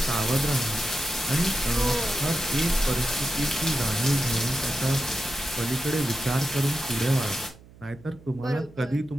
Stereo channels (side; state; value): right; noise; hum, 23 dB below the sound